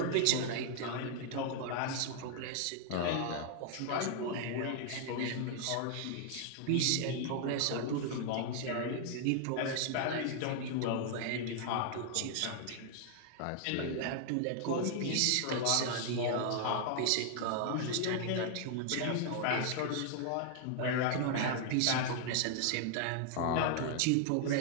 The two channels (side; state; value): both; different; correlation 0.00